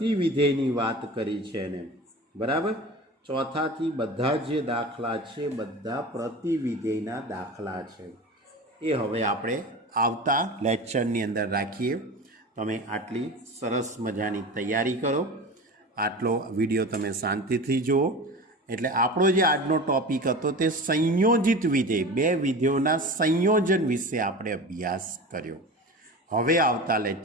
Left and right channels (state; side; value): normal; both; correlation 0.32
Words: વાત કરી છે એને. બરાબર? ચોથાથી બધા જે દાખલા છે બધા પ્રતિવિધેયના દાખલા છે. એ હવે આપણે આવતા લેક્ચરની અંદર રાખીએ. તમે આટલી સરસ મજાની તૈયારી કરો. આટલો વિડીયો તમે શાંતિથી જુઓ. એટલે આપણો જે આજનો ટોપિક હતો તે સંયોજિત વિધેય, 2 વિધેયોના સંયોજન વિશે આપણે અભ્યાસ કર્યો. હવે આવતા